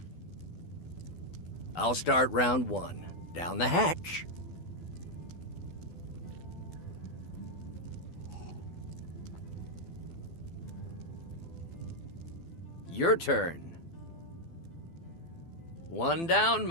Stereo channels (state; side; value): late; right; 12 ms